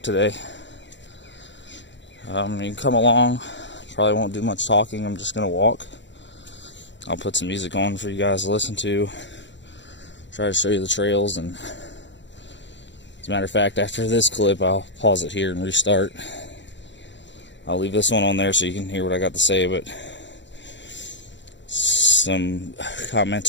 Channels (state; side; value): late; right; 0.53 ms